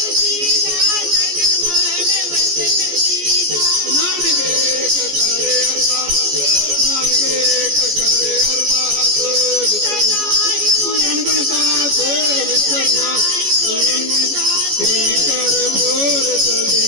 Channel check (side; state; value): left; late; 14 ms